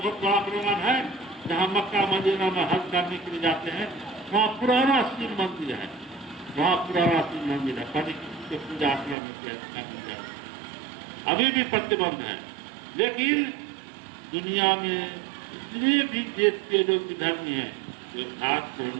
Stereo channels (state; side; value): drops out; left; at 9.2 s